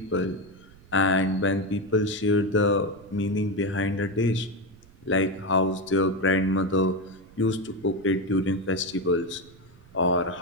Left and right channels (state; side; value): noise; right; rumble, 25 dB below the sound